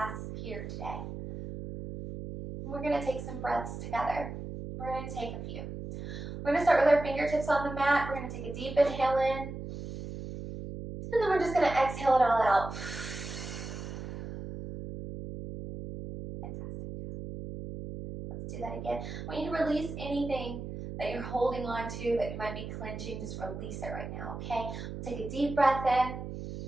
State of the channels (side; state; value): right; noise; hum, 8 dB below the sound